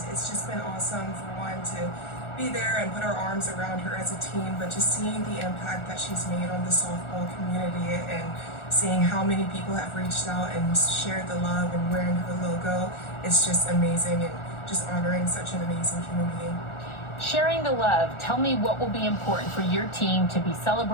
it's just been awesome for one to be there and put our arms around her as a team, but just seeing the impact that she's made on the softball community and seeing how many people have reached out and shared the love and wearing her logo, it's just amazing, and just honoring such an amazing human being. Sharing the love, tell me what will be important for your team to be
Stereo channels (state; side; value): late; right; 1.4 ms